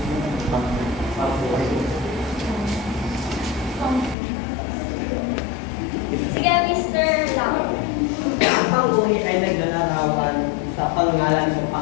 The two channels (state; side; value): drops out; right; at 4.2 s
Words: Sige, Mr. Lam. Ang pang-uri ay naglalarawan sa pangalan ng